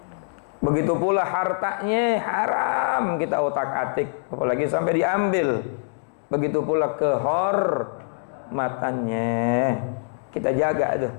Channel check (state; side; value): silent; right; digital silence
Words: Begitu pula hartanya haram kita otak-atik, apalagi sampai diambil. Begitu pula kehormatannya kita jaga itu.